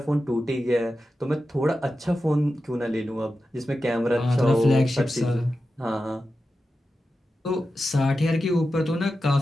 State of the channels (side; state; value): both; normal; correlation 0.92